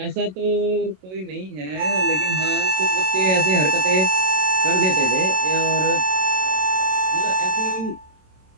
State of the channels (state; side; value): late; left; 27 ms